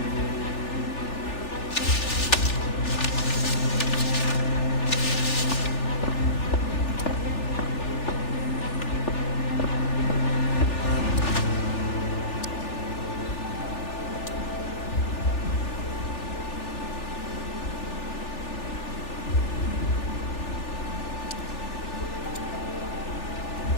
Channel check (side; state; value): right; late; 3.4 ms